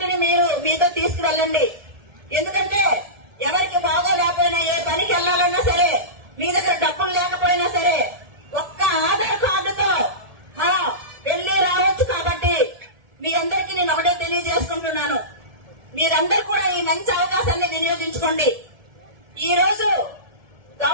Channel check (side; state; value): left; late; 1.7 ms